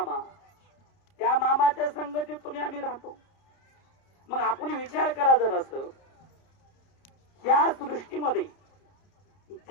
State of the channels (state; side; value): late; right; 30 ms